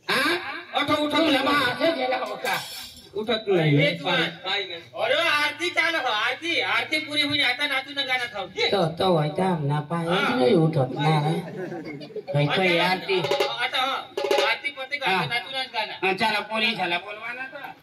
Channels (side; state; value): both; identical; correlation 1.00